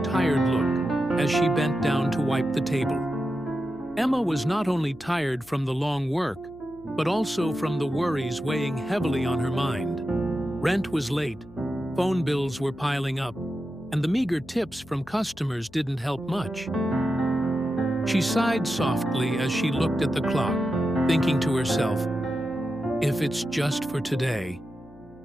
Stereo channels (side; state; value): left; noise; hum, 23 dB below the sound